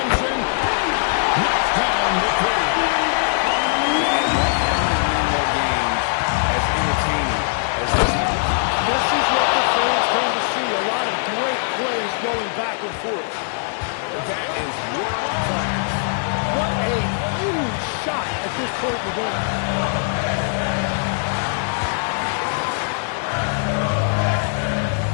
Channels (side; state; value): right; silent; digital silence